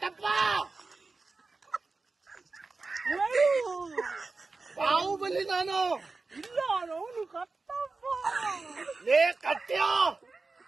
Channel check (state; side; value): quieter; left; 3.9 dB